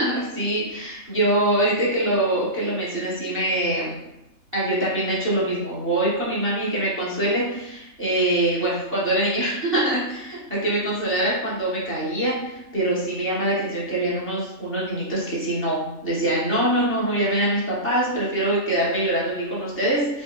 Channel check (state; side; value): late; left; 3.3 ms